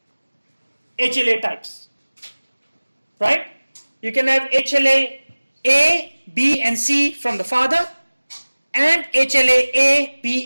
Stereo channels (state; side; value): inverted; both; correlation -1.00